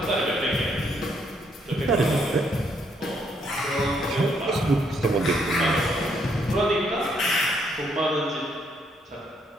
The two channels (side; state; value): both; normal; correlation 0.72